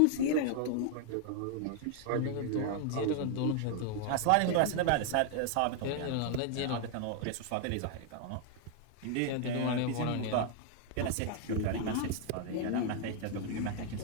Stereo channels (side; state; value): both; different; correlation 0.00